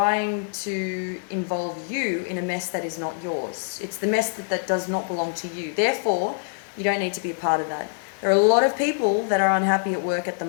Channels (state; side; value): silent; right; digital silence